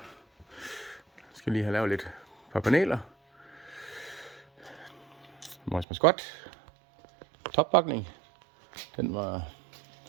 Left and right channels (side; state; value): left; drops out; at 5.9 s